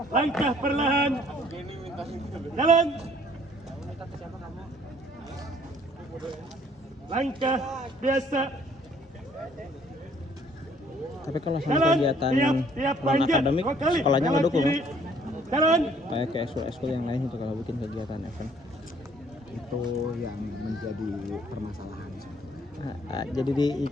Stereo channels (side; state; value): both; normal; correlation 0.60